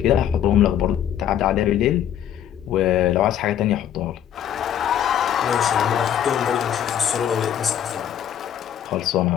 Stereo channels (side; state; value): right; quieter; 10.1 dB